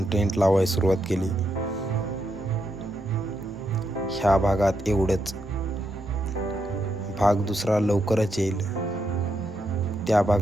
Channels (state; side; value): normal; both; correlation 0.81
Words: टेंट लावायला सुरुवात केली. ह्या भागात एवढंच. भाग दुसरा लवकरच येईल. त्या